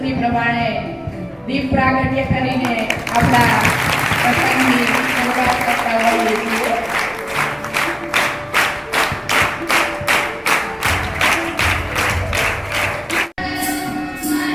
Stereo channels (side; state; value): both; identical; correlation 1.00